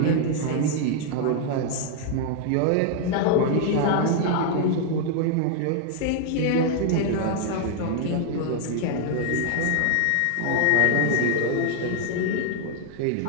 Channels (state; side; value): different; both; correlation 0.00